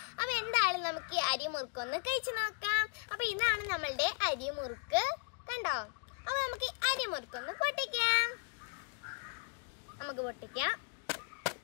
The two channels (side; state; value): right; quieter; 38.1 dB